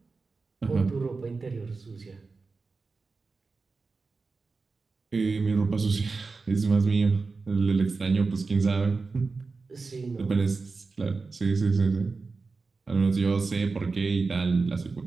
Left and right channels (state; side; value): quieter; left; 4.2 dB